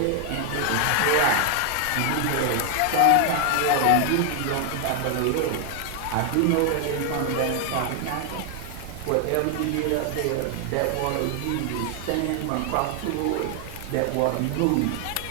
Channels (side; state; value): both; different; correlation 0.00